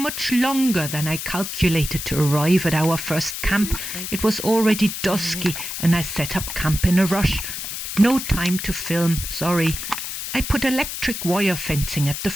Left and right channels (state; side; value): noise; left; hiss, 6 dB below the sound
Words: longer than I calculated to arrive at our first camp. It was already dusky and I set up camp in a rush. No time to film, sorry. I put electric wire fencing at the